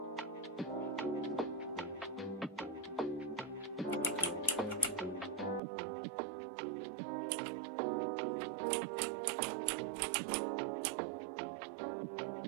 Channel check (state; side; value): drops out; left; at 5.6 s